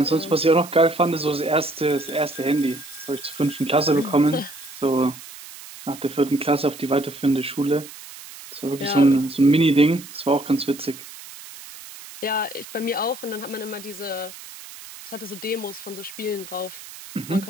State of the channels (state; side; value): noise; right; hiss, 16 dB below the sound